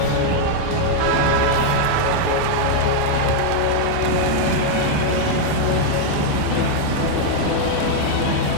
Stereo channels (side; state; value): both; different; correlation 0.00